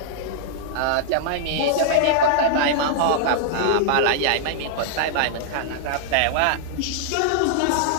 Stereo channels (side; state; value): both; different; correlation -0.01